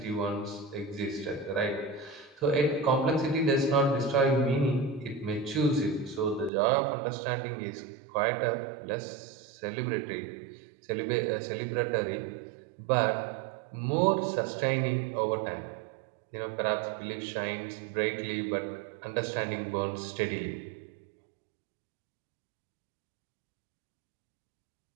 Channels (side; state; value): left; drops out; at 6.5 s